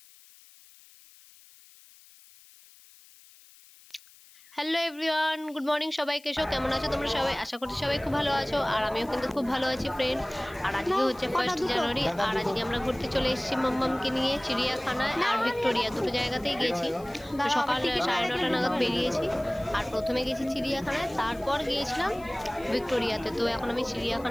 হ্যালো এভরিওয়ান, গুড মর্নিং সবাইকে। কেমন আছো তোমরা সবাই? আশা করছি সবাই খুব ভালো আছো, আর আমিও কিন্তু খুব ভালো আছি ফ্রেন্ড। আর আজকে হচ্ছে 1 জানুয়ারি, আর আজকে আমরা ঘুরতে চলে এসেছি মাম্মামকে নিয়ে চিড়িয়াখানায় আর ভিক্টোরিয়া, দুটো জায়গাতেই গেছি। তো সকাল 9:30 নাগাদ বেরিয়েছি, আর প্রথমে গেছি চিড়িয়াখানায়, তারপর গিয়েছিলাম ভিক্টোরিয়াতে। তো এখন আমি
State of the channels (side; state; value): left; noise; hiss, 24 dB below the sound